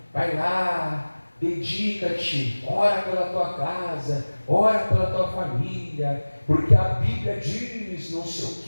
vai lá, dedica-te, ora pela tua casa, ora pela tua família, porque a Bíblia diz não sei o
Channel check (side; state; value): both; inverted; correlation -1.00